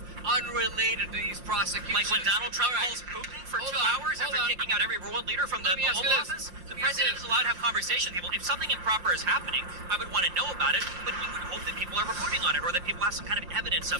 unrelated to these prosecutions. Like when Donald Trump calls Putin for 2 hours after kicking out every world leader from the Oval Office? The president is allowed to have conversations with people. If something improper is happening, I would want to know about it, but you would hope that people are reporting on it, or that people have some kind of evidence of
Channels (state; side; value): late; left; 5.7 ms